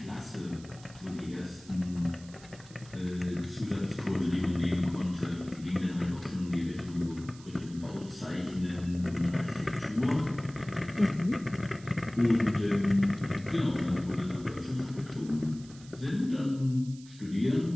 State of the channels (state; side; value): noise; right; hiss, 21 dB below the sound